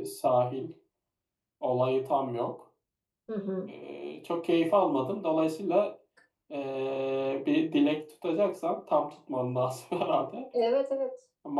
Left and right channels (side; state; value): both; identical; correlation 1.00